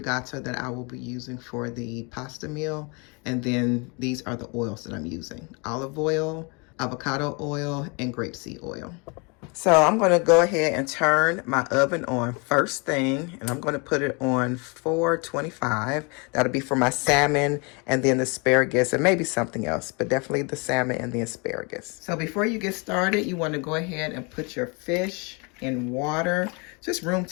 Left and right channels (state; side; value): quieter; right; 31.1 dB